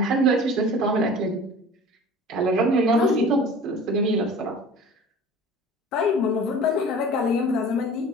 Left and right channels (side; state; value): both; normal; correlation 0.42